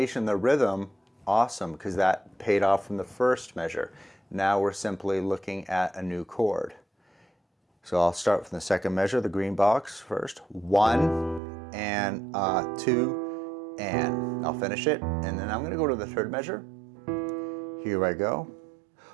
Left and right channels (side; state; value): left; drops out; at 11.4 s